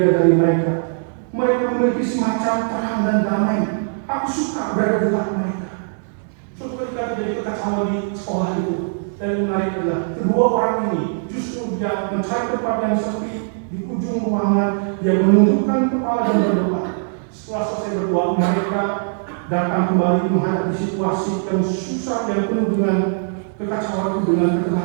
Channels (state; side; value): silent; left; digital silence